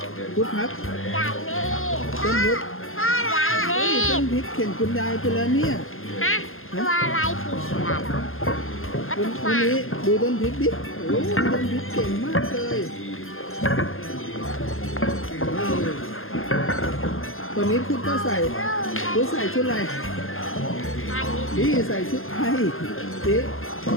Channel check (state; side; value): late; right; 0.60 ms